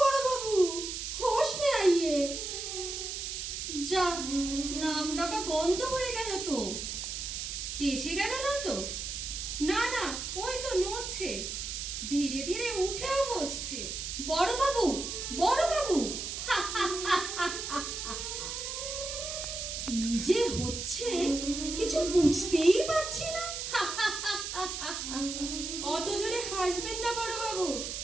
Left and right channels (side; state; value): right; noise; hiss, 5 dB below the sound